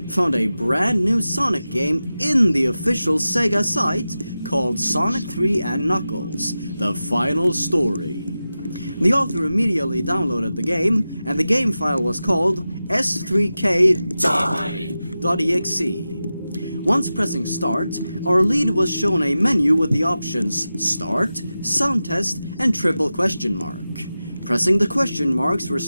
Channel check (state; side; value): inverted; both; correlation -0.93